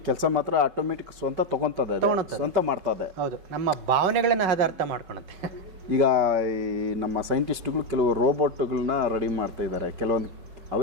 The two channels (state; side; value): late; left; 5.3 ms